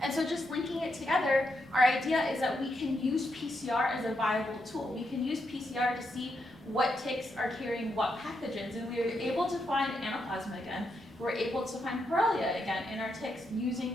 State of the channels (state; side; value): normal; both; correlation 0.82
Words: And so just linking it together, our idea is that we can use PCR as a viable tool. We can use PCR to see what ticks are carrying what pathogens, and we were able to find Anaplasma again. We're able to find Borrelia again in our ticks